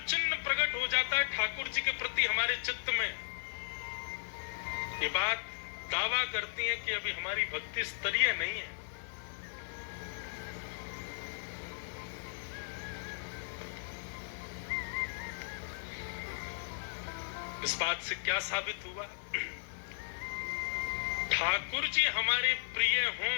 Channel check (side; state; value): right; silent; digital silence